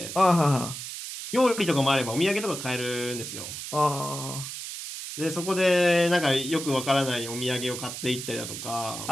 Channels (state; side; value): noise; right; hiss, 8 dB below the sound